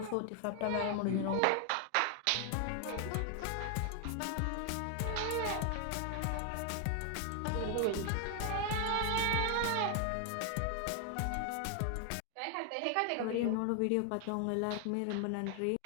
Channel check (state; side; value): different; both; correlation 0.00